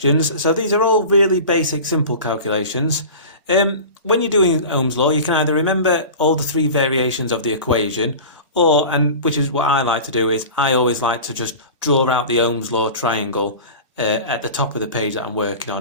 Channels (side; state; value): both; inverted; correlation -0.34